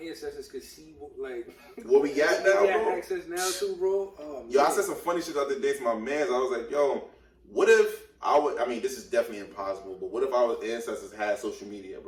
ancestors could see what we got now, we got bro. access now too, bro. Oh, yo, I said some funny shit the other day to my mans. I was like, yo, what if I mean, this is definitely impossible, but what if our ancestors had social media,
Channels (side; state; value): both; identical; correlation 1.00